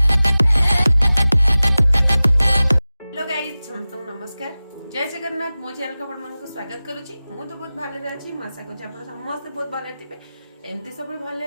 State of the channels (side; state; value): both; inverted; correlation -0.97